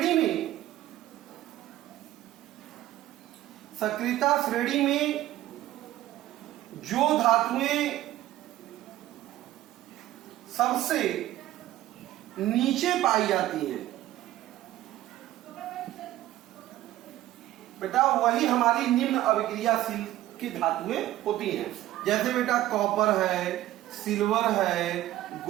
में जो धातुएं सबसे नीचे पाई जाती हैं बेटा वही हमारी निम्न अभिक्रियाशील की धातुएं होती हैं। जैसे बेटा कॉपर है, सिल्वर है,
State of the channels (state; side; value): quieter; left; 14.6 dB